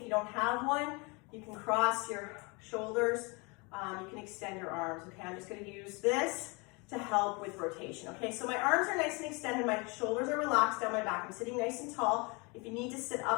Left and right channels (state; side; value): quieter; right; 29.0 dB